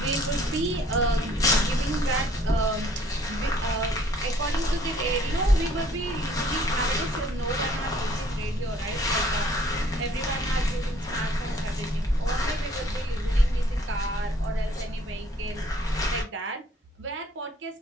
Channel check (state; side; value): normal; both; correlation 0.59